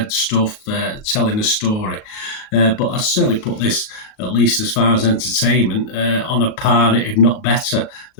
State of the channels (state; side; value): late; right; 37 ms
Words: stuff, telling a story. But I certainly put this, at least as far as entertainment, on a par, if not better,